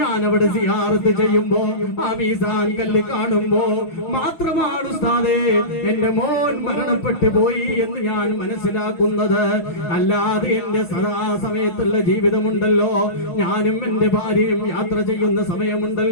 അവിടെ സിയാറത്ത് ചെയ്യുമ്പോ ആ മീസാൻ കല്ല് കാണുമ്പോ മാത്രമാണ് ഉസ്താദേ എന്റെ മോൻ മരണപ്പെട്ടു പോയി എന്ന് ഞാൻ മനസ്സിലാക്കുന്നത്. അല്ലാതെ എന്റെ സദാസമയത്തുള്ള ജീവിതമുണ്ടല്ലോ, ഞാനും എന്റെ ഭാര്യയും യാത്ര ചെയ്യുന്ന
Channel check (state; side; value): late; right; 6.1 ms